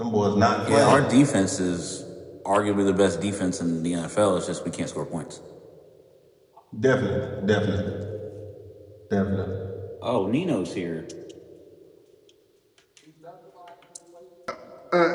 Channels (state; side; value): identical; both; correlation 1.00